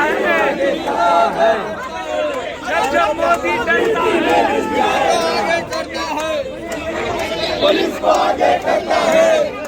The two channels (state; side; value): identical; both; correlation 1.00